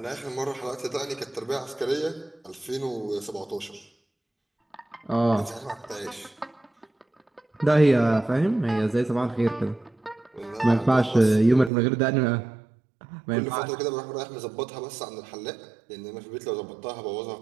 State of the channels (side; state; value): left; drops out; at 11.7 s